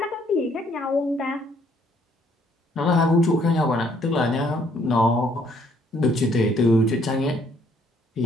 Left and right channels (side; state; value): both; normal; correlation 0.66